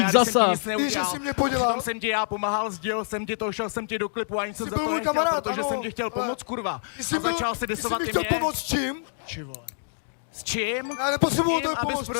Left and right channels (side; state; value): right; silent; digital silence